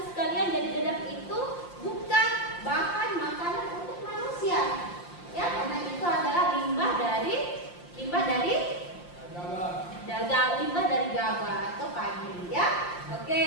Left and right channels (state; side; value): late; right; 5.7 ms